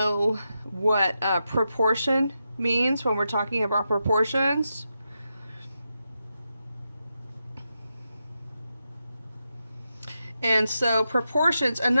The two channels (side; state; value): both; inverted; correlation -0.87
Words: what proportion means when we're talking about proportions. And so proportions,